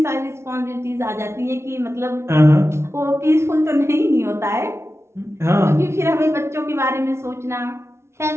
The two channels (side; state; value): left; late; 0.13 ms